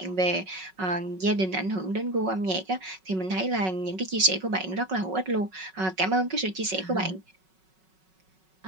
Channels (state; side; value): late; left; 5.4 ms